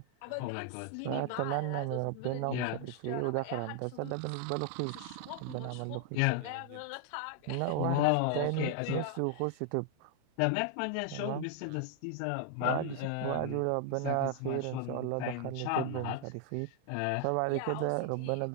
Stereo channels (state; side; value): different; both; correlation 0.00